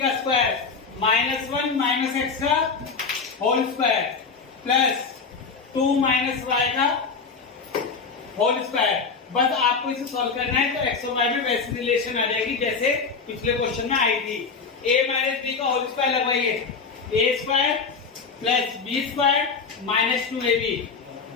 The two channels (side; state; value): right; quieter; 5.0 dB